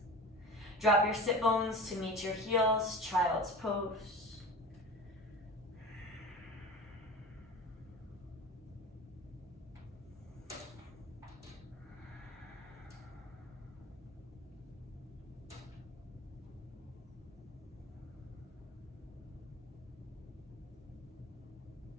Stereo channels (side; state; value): both; normal; correlation 0.35